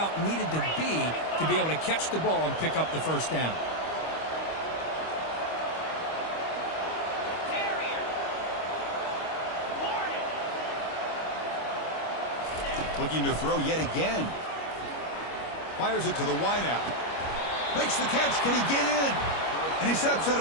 needed to be able to catch the ball and pick up the first down. Looking to throw yet again. Fires it to the wideout. Makes the catch. Can he get in? And he steps out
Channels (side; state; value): right; late; 25 ms